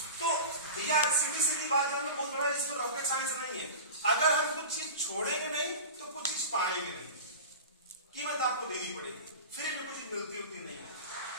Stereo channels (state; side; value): inverted; both; correlation -0.32